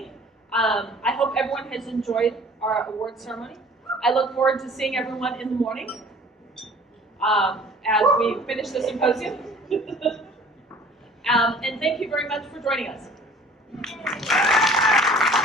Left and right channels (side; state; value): both; normal; correlation 0.50